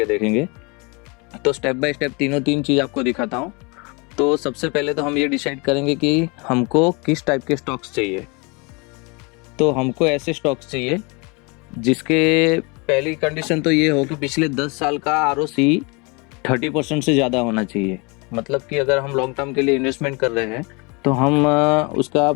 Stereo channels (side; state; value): right; quieter; 29.5 dB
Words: देखेंगे। तो स्टेप बाय स्टेप तीन चीज़ आपको दिखाता हूँ। तो सबसे पहले तो हम ये डिसाइड करेंगे कि हमको किस टाइप के स्टॉक्स चाहिए। तो हमको ऐसे स्टॉक्स चाहिए जिसके पहली कंडीशन तो ये हो कि पिछले 10 साल का ROC 30% से ज़्यादा होना चाहिए। मतलब कि अगर हम लॉन्ग टर्म के लिए इन्वेस्टमेंट कर रहे हैं तो हम उसका